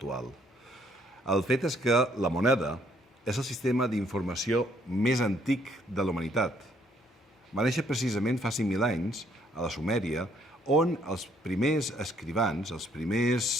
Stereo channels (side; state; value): both; normal; correlation 0.67